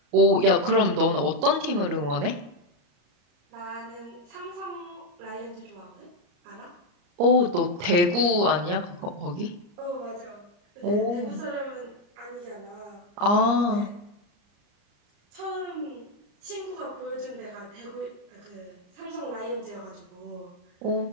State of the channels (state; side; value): late; left; 34 ms